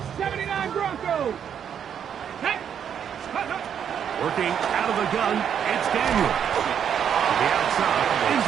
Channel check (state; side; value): quieter; left; 8.4 dB